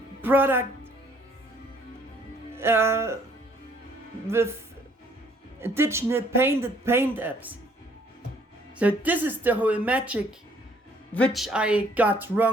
product with additional painted paint apps. So this is the whole magic which I got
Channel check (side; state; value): both; normal; correlation 0.63